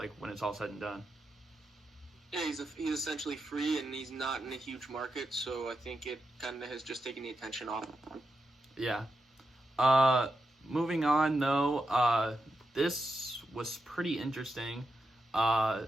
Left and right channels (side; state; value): both; normal; correlation 0.87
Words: when it's all said and done. Yeah, he's essentially free, and he's not in a huge market, so I think it kind of has just taken the attention off of him. Yeah. Moving on, though, this was pretty interesting.